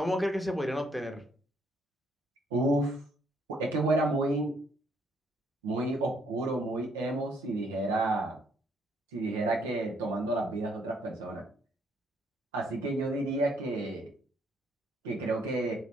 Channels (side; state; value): both; normal; correlation 0.69